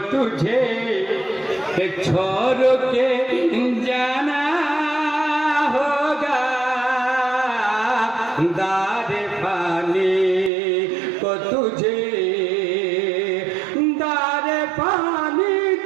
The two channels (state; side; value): drops out; left; at 10.5 s